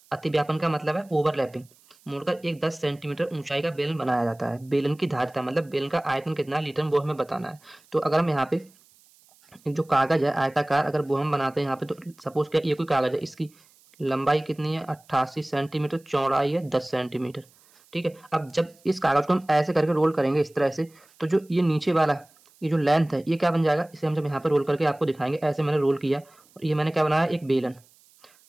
अतिव्यापन का मतलब है ओवरलैपिंग, मोड़कर एक 10 सेंटीमीटर ऊंचाई का बेलन बनाया जाता है। बेलन की धारिता मतलब बेलन का आयतन कितना लीटर वो हमें बताना है। तो अगर हम यहाँ पे जो कागज है आयताकार अगर वो हम बनाते हैं यहाँ पे, तो सपोज क्या ये कोई कागज है, इसकी लंबाई कितनी है 88 सेंटीमीटर, चौड़ाई है 10 सेंटीमीटर। ठीक है, अब जब इस कागज को हम ऐसे करके रोल करेंगे इस तरह से, तो जो ये नीचे वाला ये जो लेंथ है ये क्या बन जाएगा, इसे हम जब यहाँ पे रोल करके आपको दिखाएंगे, ऐसे मैंने रोल किया और ये मैंने क्या बनाया एक बेलन,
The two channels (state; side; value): noise; right; hiss, 30 dB below the sound